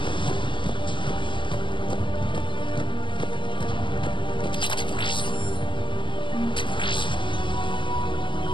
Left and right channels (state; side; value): late; right; 0.24 ms